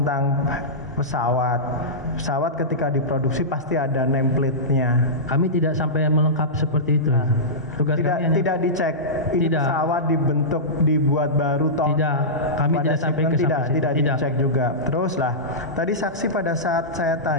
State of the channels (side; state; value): both; normal; correlation -0.16